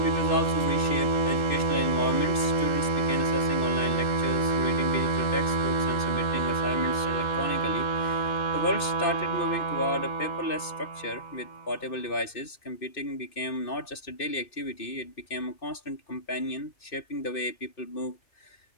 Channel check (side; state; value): right; late; 2.6 ms